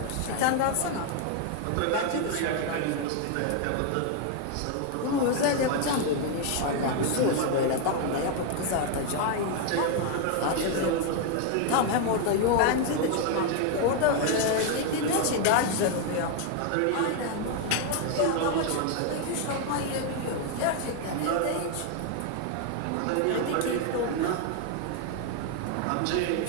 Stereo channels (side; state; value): both; different; correlation 0.01